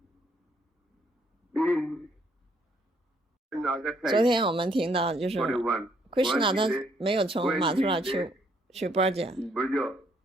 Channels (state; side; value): normal; both; correlation 0.69